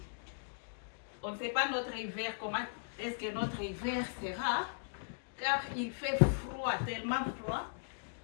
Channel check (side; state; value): right; silent; digital silence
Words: On ne sait pas notre hiver, comment est-ce que notre hiver sera, car il fait froid, tellement froid.